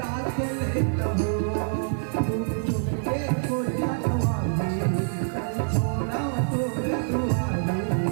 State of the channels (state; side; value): silent; left; digital silence